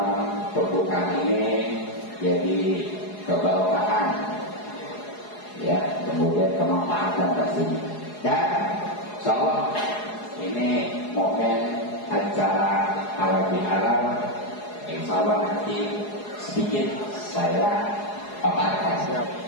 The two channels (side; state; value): right; late; 4.8 ms